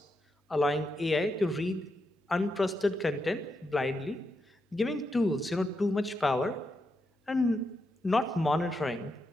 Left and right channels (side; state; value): both; normal; correlation 0.83